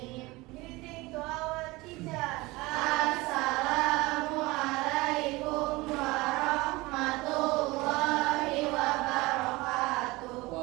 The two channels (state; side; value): quieter; left; 21.9 dB